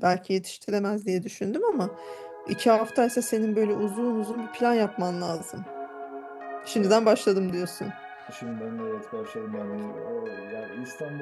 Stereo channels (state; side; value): identical; both; correlation 1.00